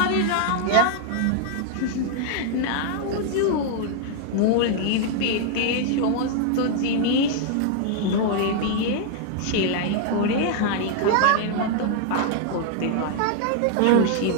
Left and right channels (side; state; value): both; different; correlation -0.01